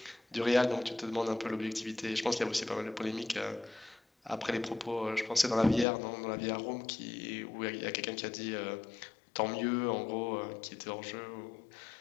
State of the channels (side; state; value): right; drops out; at 5.9 s